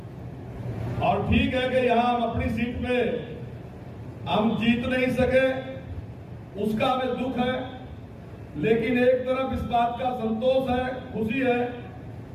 और ठीक है कि यहां हम अपनी सीट पे हम जीत नहीं सके, उसका हमें दुख है। लेकिन एक तरफ इस बात का संतोष है, खुशी है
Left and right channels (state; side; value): identical; both; correlation 1.00